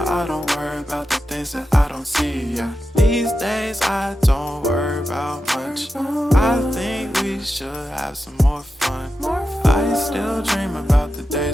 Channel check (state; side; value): normal; both; correlation 0.90